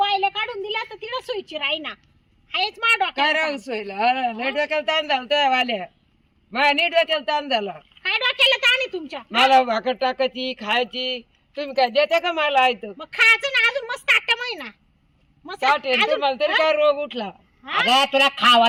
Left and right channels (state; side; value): identical; both; correlation 1.00